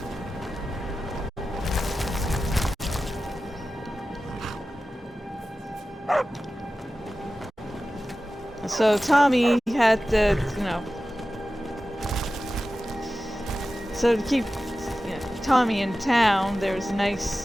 So Tommy had to, so to keep Tommy in town, there was a nice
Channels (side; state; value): both; normal; correlation 0.94